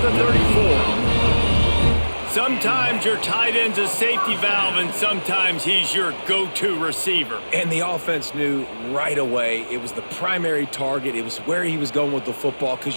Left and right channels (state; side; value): inverted; both; correlation -1.00